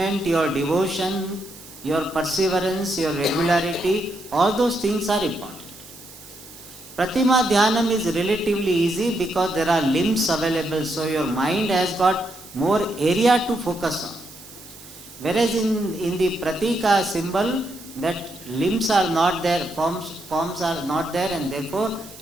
your devotion, your perseverance, your regularity, all those things are important. Pratima Dhyanam is relatively easy because there are limbs available, so your mind has got more area to focus on. Whereas in the Pratika symbol, that limbs are not there, forms are not there, and therefore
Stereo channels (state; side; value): noise; right; hiss, 18 dB below the sound